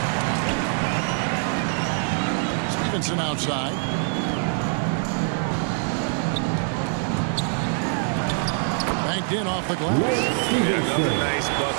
Stevenson outside. Banked in off the glass. Yeah, another nice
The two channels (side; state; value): left; silent; 63 dB below the other